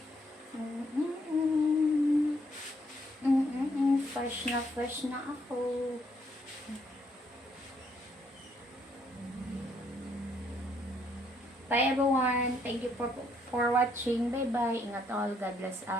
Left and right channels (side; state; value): both; normal; correlation 0.71